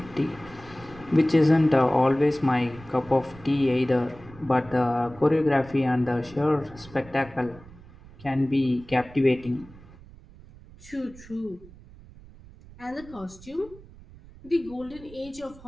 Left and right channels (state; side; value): noise; right; rumble, 21 dB below the sound